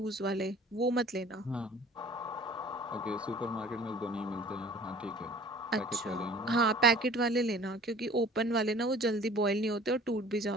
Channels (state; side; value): normal; both; correlation 0.47